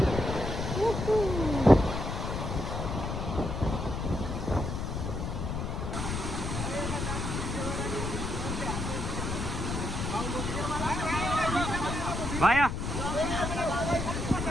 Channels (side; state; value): left; noise; rumble, 3 dB below the sound